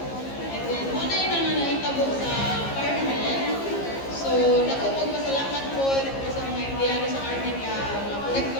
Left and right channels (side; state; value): right; late; 15 ms